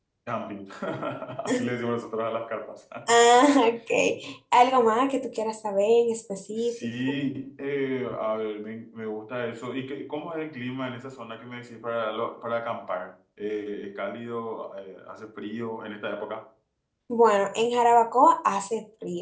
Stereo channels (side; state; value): both; identical; correlation 1.00